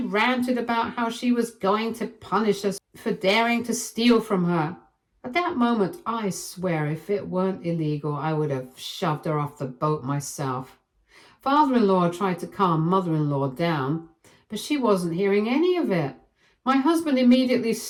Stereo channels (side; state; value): both; identical; correlation 1.00